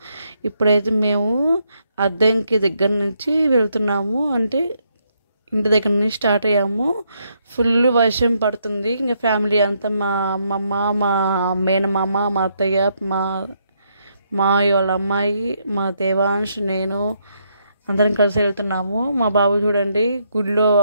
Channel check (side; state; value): both; inverted; correlation -0.76